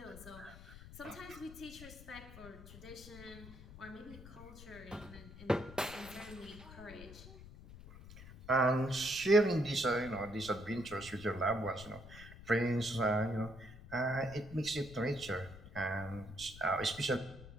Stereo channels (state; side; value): noise; left; rumble, 15 dB below the sound